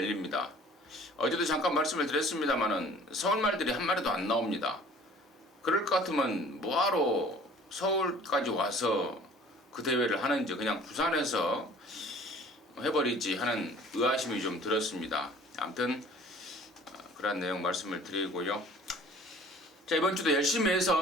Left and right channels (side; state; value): both; normal; correlation 0.49